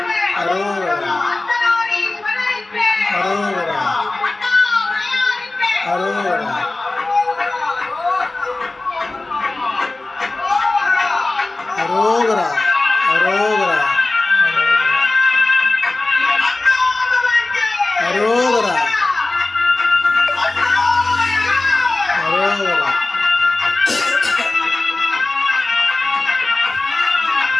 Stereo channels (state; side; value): quieter; right; 3.1 dB